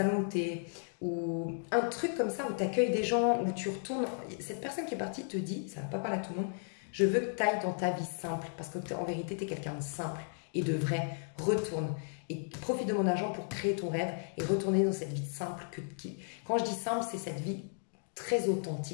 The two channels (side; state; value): right; silent; digital silence